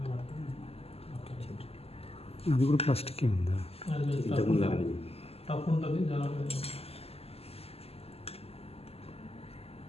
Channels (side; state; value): right; late; 0.29 ms